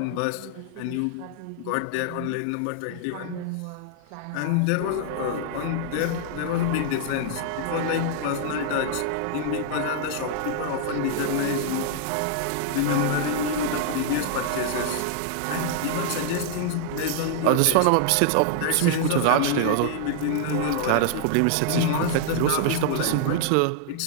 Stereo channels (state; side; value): different; both; correlation -0.01